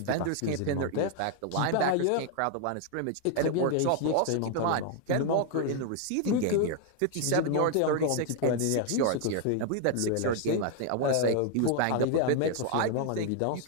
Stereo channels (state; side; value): different; both; correlation 0.00